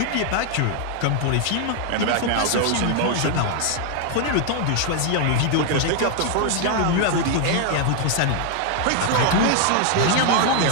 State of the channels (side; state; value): both; different; correlation 0.00